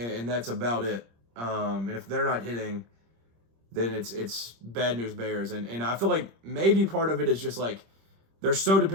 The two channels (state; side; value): late; left; 26 ms